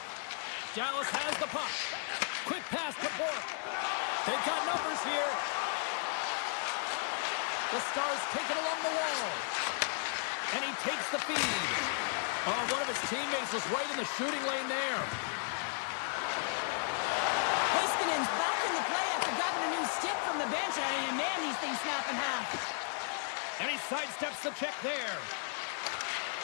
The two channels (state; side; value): silent; right; 55 dB below the other